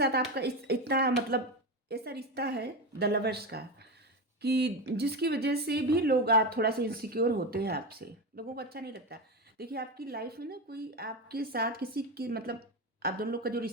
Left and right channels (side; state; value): both; normal; correlation 0.18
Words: आपका इतना मतलब ऐसा रिश्ता है द लवर्स का कि जिसकी वजह से भी लोग आप थोड़ा सा इनसिक्योर होते हैं आपसे, लोगों को अच्छा नहीं लगता। देखिए आपकी लाइफ में ना कोई आपके साथ किसी की मतलब आप दोनों लोग का जो